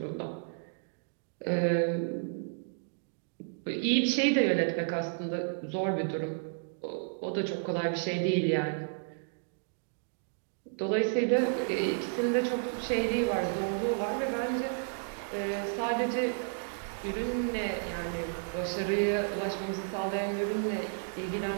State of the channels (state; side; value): silent; left; digital silence